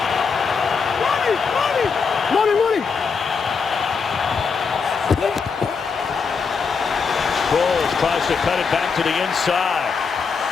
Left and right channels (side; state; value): right; quieter; 5.4 dB